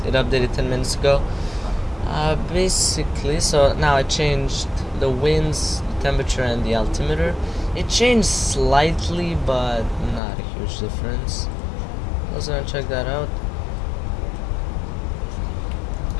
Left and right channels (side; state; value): right; drops out; at 10.2 s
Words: updated 10 minutes ago. Basically, so now I changed the winds, the temperature, and the altimeter. It changed slightly, but not a huge difference. Let's go and check that out.